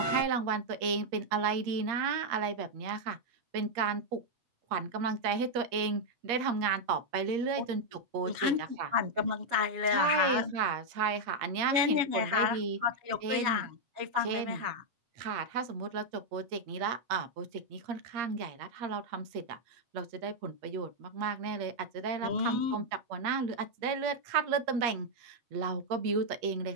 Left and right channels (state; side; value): late; left; 8.5 ms